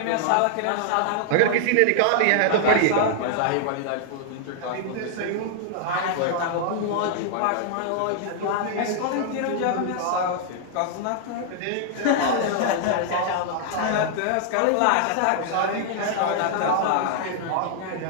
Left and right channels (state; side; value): different; both; correlation -0.01